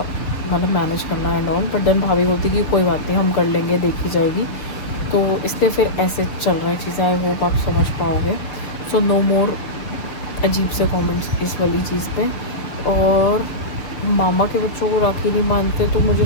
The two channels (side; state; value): right; late; 6.6 ms